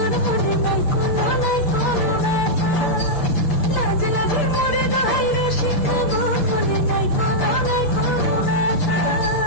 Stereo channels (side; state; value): right; late; 6.7 ms